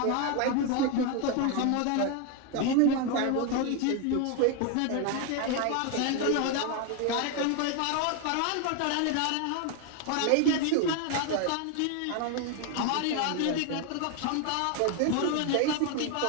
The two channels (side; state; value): both; different; correlation 0.01